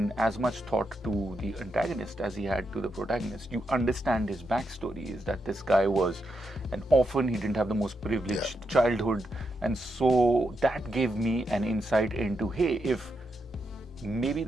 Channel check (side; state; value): both; normal; correlation 0.83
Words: as much thought to the antagonist as he had to the protagonist. You understand his backstory, is that this guy was an orphan, he didn't have the most privileged childhood, and so that gave me an insight into, hey, if maybe